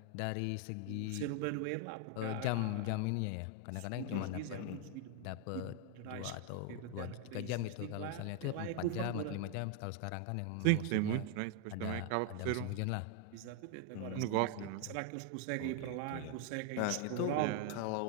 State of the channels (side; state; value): both; different; correlation 0.00